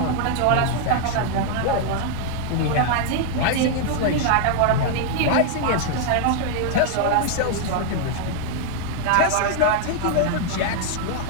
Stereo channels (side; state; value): both; different; correlation 0.00